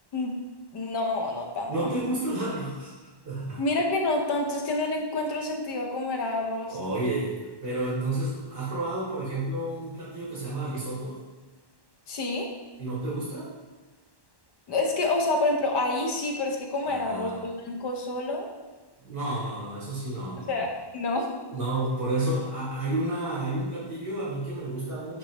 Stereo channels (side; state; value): right; late; 1.1 ms